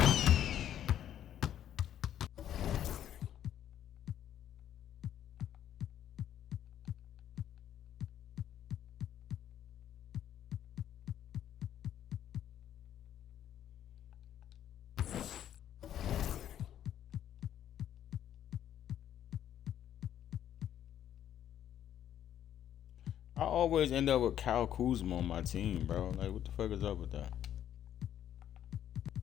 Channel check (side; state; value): right; quieter; 10.7 dB